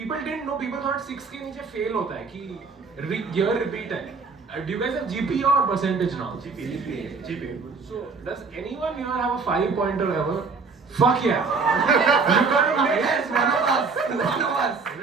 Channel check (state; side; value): quieter; left; 4.7 dB